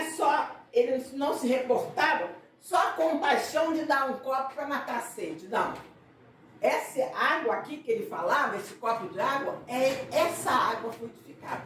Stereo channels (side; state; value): both; identical; correlation 1.00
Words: só, ele não se reportava só a compaixão de dar um copo para matar a sede, não. Essa água aqui que ele falava, esse copo de água, é essa água fluidificada.